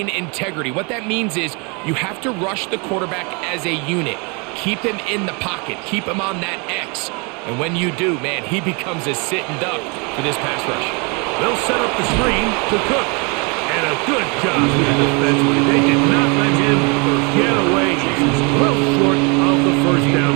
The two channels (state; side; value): quieter; left; 31.6 dB